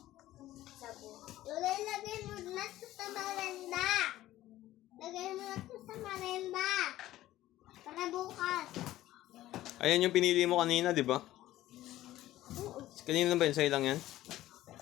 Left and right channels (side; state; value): right; quieter; 15.0 dB